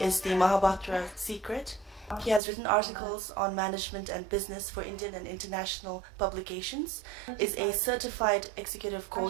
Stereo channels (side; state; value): left; drops out; at 2.4 s